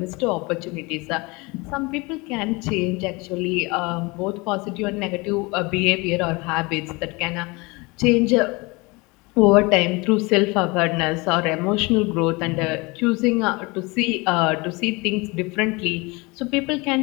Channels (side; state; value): right; quieter; 25.7 dB